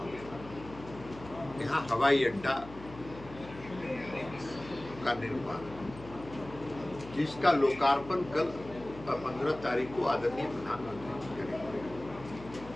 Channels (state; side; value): noise; left; hum, 16 dB below the sound